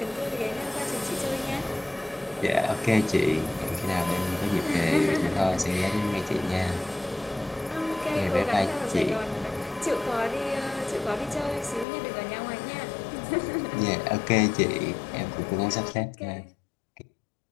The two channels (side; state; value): right; drops out; at 11.9 s